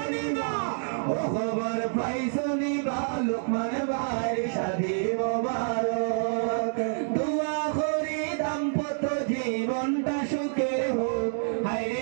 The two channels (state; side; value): silent; left; digital silence